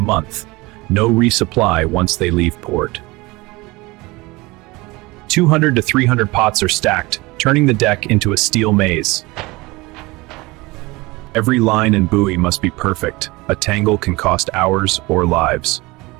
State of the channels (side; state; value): left; quieter; 22.6 dB